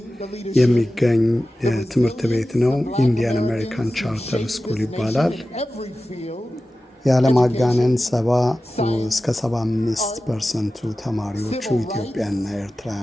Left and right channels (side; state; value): both; normal; correlation 0.95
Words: የሚገኝ ትምህርት ቤት ነው። ኢንዲያን አሜሪካን ቻርተር ስኩል ይባላል። ያለማጋነን 70 እስከ 75% ተማሪዎቹ ኢትዮጵያና